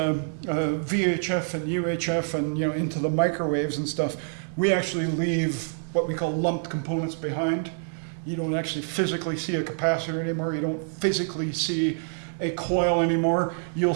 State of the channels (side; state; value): left; silent; 61 dB below the other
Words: VHF and UHF and into the microwaves and stuff, we actually leave what we call lumped components behind. You don't actually physically see a capacitor anymore. You don't physically see a coil anymore. You'll